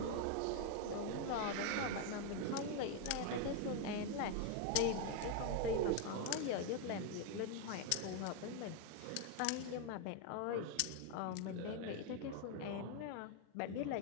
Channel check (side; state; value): both; different; correlation 0.01